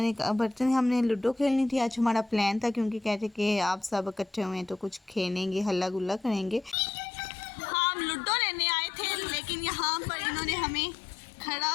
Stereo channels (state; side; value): drops out; right; at 6.8 s